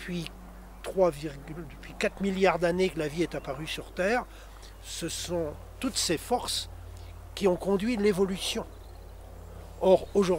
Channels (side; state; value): both; identical; correlation 1.00